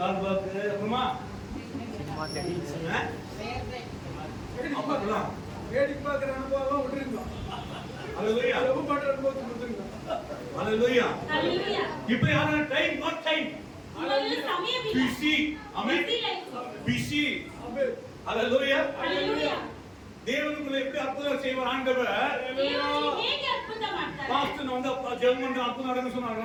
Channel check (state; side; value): identical; both; correlation 1.00